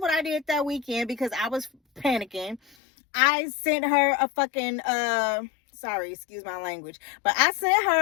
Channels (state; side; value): drops out; right; at 2.8 s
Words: I did that weekend because I was panicking? I sent her a fucking, sorry, excuse my language, but I sent